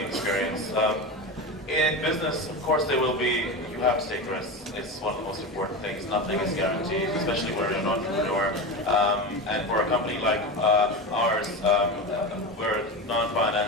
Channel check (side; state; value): both; normal; correlation 0.23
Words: experience. In business, of course, there will be, you have to take risks. It's one of the most important things. Nothing is guaranteed, especially when you're an entrepreneur. And for a company like ours, we're a